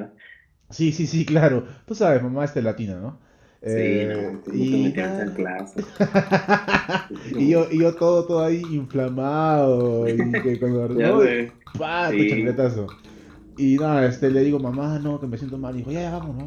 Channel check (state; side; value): identical; both; correlation 1.00